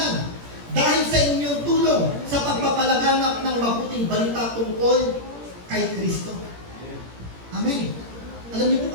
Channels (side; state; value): left; late; 17 ms